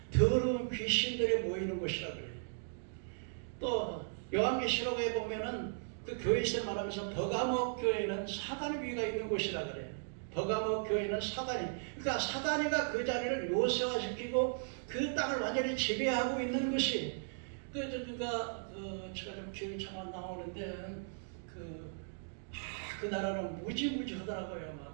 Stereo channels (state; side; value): silent; left; digital silence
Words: 더러운 귀신들이 모이는 곳이라 그래요. 또 요한계시록에 보면은 그 교회에서 말하면서 버가모 교회는 사단의 위가 있는 곳이라 그래요. 버가모 교회는 사단이, 그러니까 사단이가 그 자리를 요새화시키고 그 땅을 완전히 지배하고 있는 것이 제가 좀 기억이 참 안 나오는데 그 나라는 무지무지하더라고요.